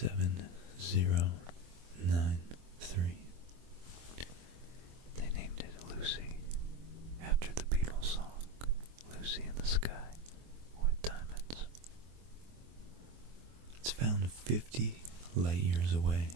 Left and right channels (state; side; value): late; left; 24 ms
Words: They named it Lucy after the Beatles song Lucy in the Sky with Diamonds. It's found 50 light years away